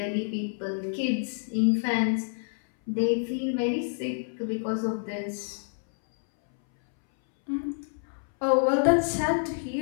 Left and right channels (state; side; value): silent; right; 60 dB below the other